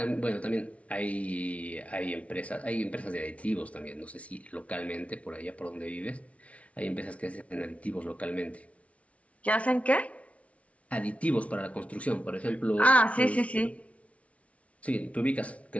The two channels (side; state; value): right; late; 0.064 ms